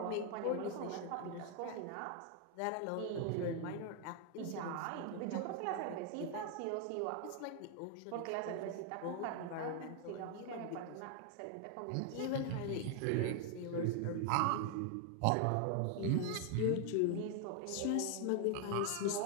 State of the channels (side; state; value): both; different; correlation 0.00